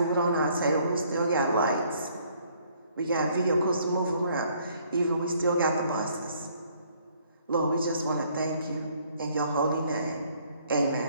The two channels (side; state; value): both; inverted; correlation -0.63